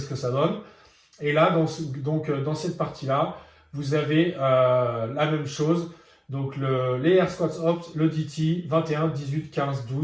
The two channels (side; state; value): both; identical; correlation 1.00